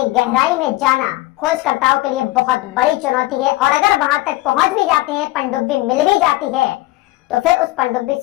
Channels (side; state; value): right; quieter; 18.8 dB